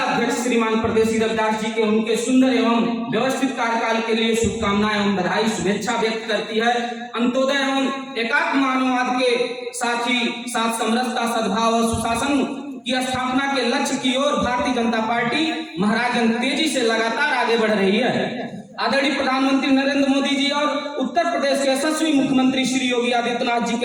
अध्यक्ष श्रीमान परदेसी रविदास जी के उनके सुंदर एवं व्यवस्थित कार्यकाल के लिए शुभकामनाएं एवं बधाई शुभेच्छा व्यक्त करती है। अंत्योदय एवं एकात्म मानववाद के साथ ही साथ समरसता, सद्भाव और सुशासन की स्थापना के लक्ष्य की ओर भारतीय जनता पार्टी महाराजगंज तेजी से लगातार आगे बढ़ रही है। आदरणीय प्रधानमंत्री नरेंद्र मोदी जी और उत्तर प्रदेश के यशस्वी मुख्यमंत्री श्री योगी आदित्यनाथ जी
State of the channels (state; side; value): identical; both; correlation 1.00